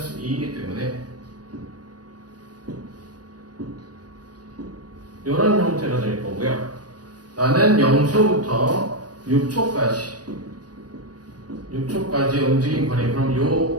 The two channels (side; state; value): left; late; 0.69 ms